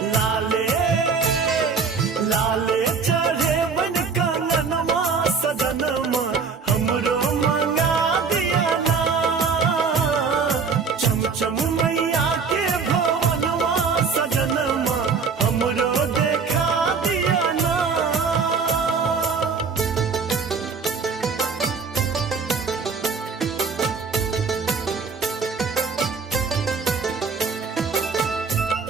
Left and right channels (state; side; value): quieter; left; 5.3 dB